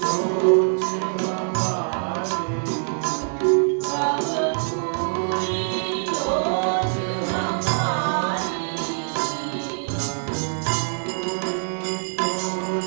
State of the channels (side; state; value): left; silent; 60 dB below the other